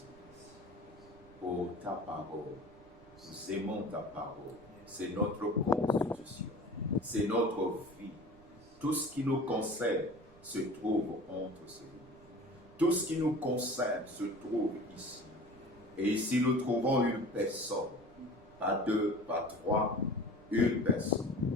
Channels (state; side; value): noise; right; rumble, 24 dB below the sound